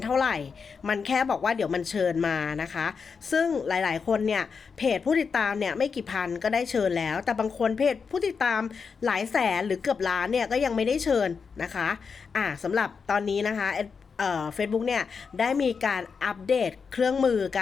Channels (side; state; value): right; quieter; 5.6 dB